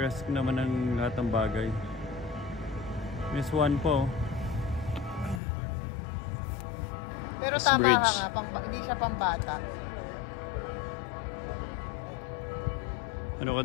naman ng lahat ng bagay. Miss One po. Pero This tama bridge. ka nga, hindi siya pambata. Ano ka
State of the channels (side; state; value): right; drops out; at 5.4 s